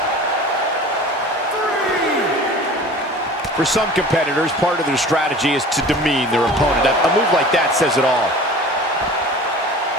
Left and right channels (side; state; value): both; normal; correlation 0.41